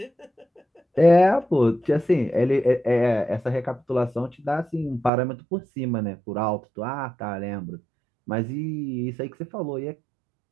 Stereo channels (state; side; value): drops out; left; at 5.1 s